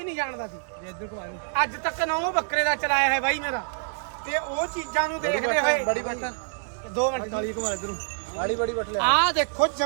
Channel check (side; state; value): left; silent; digital silence